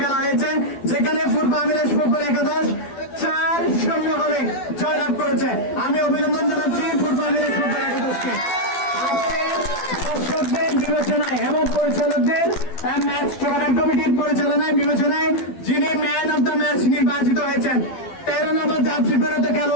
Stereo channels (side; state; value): right; late; 12 ms